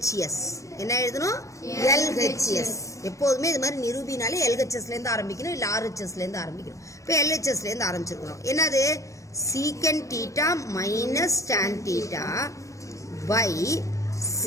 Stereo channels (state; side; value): late; right; 0.15 ms